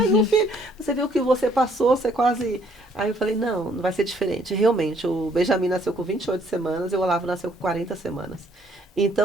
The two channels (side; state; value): both; normal; correlation 0.64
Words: um filho. Você viu o que você passou, você quase... Aí eu falei, não vai ser diferente. Realmente, o Benjamin nasceu com 28 semanas e o Olavo nasceu com 40 semanas.